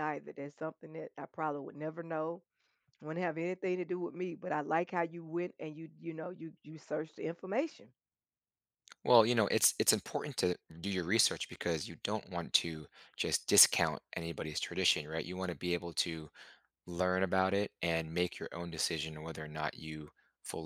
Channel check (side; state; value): both; identical; correlation 1.00